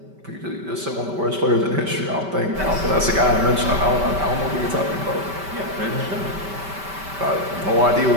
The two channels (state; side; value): late; left; 5.2 ms